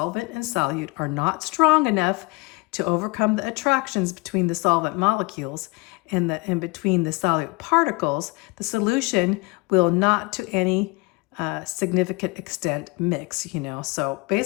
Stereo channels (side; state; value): right; quieter; 26.9 dB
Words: and solute are not strong enough to overcome the attractions between the solvent molecules and between the solute particles, the solution will not to any significant extent mix, So